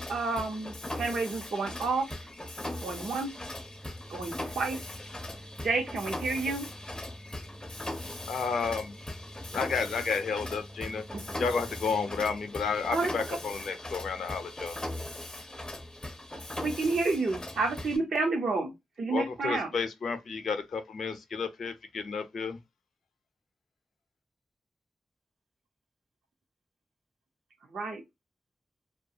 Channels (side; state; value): both; normal; correlation 0.74